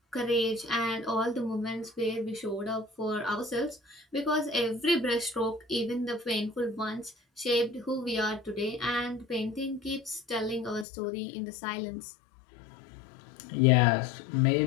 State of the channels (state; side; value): drops out; right; at 10.9 s